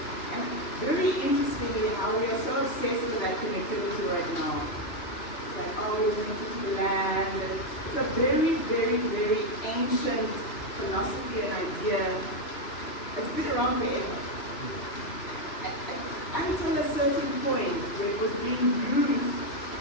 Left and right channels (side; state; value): right; late; 3.0 ms